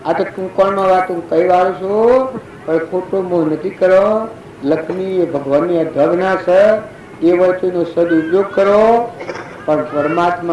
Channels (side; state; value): both; identical; correlation 1.00